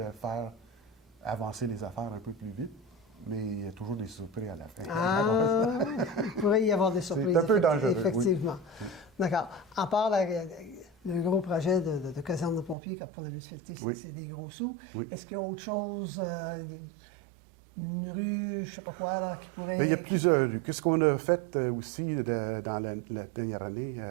faire avancer les affaires un peu plus vite, mais il y a toujours des surprises à la fin. Ah, il pourrait y avoir des surprises. C'est un peu dangereux, effectivement. Oui. D'accord. À part le gros projet de caserne de pompiers, comme pour la municipalité, c'est des gros sous. Oui. Est-ce qu'il y a autre chose, une rue, je ne sais pas quoi, là, qui pourrait... Mais il y a plusieurs rues. Qu'est-ce qu'on a fait aussi dans la dernière année,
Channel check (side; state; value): left; drops out; at 12.8 s